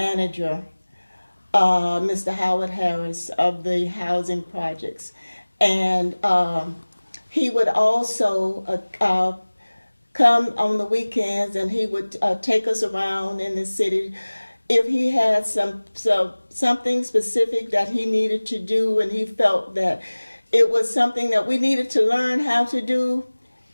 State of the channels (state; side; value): inverted; both; correlation -1.00